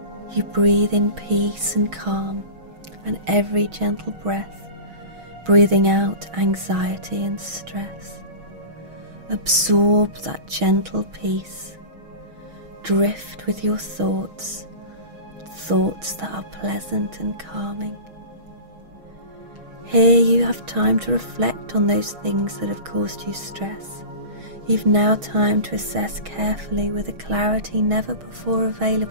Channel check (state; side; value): late; left; 6.3 ms